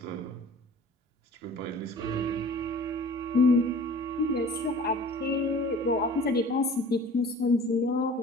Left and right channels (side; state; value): both; normal; correlation 0.45